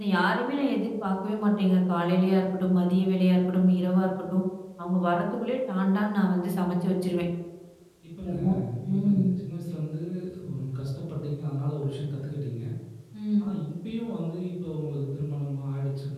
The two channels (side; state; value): both; identical; correlation 1.00